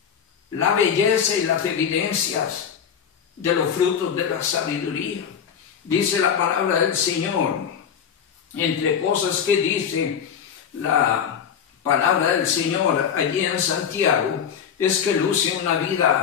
la belleza y las evidencias de los frutos de la sabiduría. Dice la palabra del Señor, entre cosas que dice la palabra del Señor allí en Santiago, es que luce una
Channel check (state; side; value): quieter; right; 7.8 dB